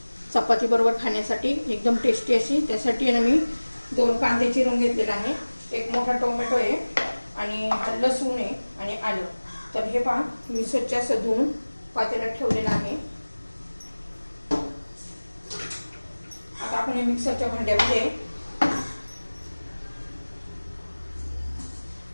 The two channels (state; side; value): inverted; both; correlation -1.00